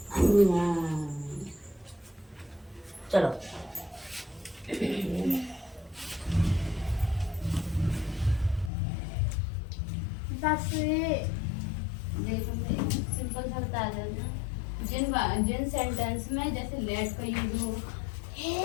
चलो बस देखो सिंपल सा बता देना। जिन सेंटेंस में जैसे लेट का यूज हो,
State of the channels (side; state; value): right; drops out; at 8.7 s